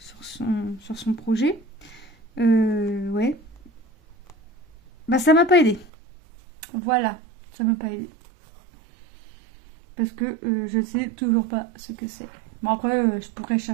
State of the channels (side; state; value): left; drops out; at 5.9 s